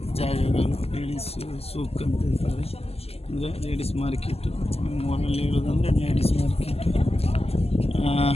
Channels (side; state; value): right; late; 0.29 ms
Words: ಜಾಗಗಳು ಲೇಡೀಸ್ ಸೂಕ್ ಅಂತ ಹೇಳ್ತಾರೆ, ಅಂದರೆ ಲೇಡೀಸ್ ಮಾರ್ಕೆಟು. ಮೂರಲ್ಲಿ ಹೇಳೋದಂದರೆ ಲೇಡೀಸ್ ಮಾರ್ಕೆಟು.